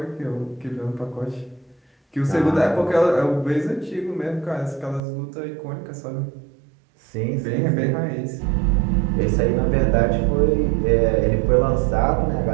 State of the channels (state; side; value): drops out; left; at 5.0 s